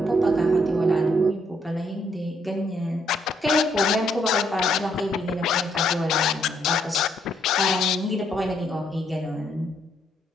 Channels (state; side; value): normal; both; correlation 0.72